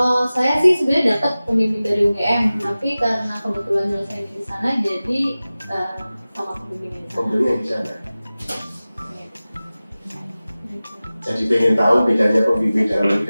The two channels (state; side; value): inverted; both; correlation -0.97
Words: saya sih sebenarnya dapat pembimbing dari UGM, tapi karena kebetulan nyelesain di sana jadi sama pembimbing di sana. Pembimbing di sana. Jadi pengen tahu bedanya pembimbing dalam negeri